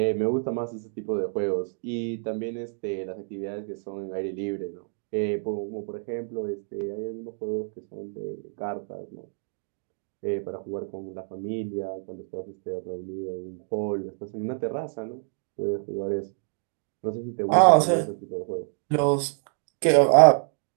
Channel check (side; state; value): left; silent; digital silence